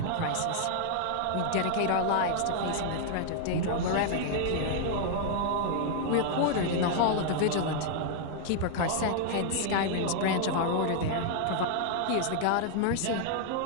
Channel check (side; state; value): both; different; correlation 0.00